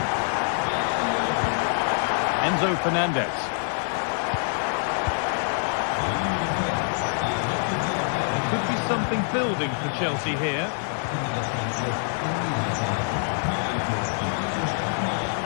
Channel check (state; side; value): silent; right; 61 dB below the other